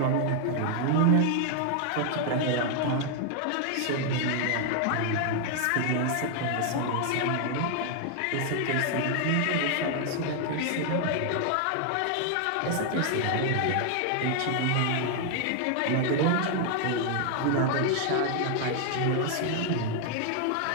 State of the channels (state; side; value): different; both; correlation 0.00